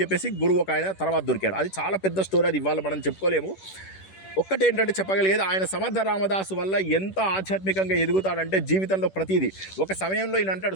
చెప్పేసి గురువు ఒక ఆయన తర్వాత దొరికాడు. అది చాలా పెద్ద స్టోరీ, అది ఇవాళ మనం చెప్పుకోలేము. ఒక్కటేంటంటే చెప్పగలిగేది, ఆయన సమర్థ రామదాసు వల్ల ఎంత ఆధ్యాత్మికంగా ఎదుగుతాడంటే జీవితంలో ప్రతిదీ. ఒక సమయంలో ఈయన అంటాడు,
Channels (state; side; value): late; right; 10 ms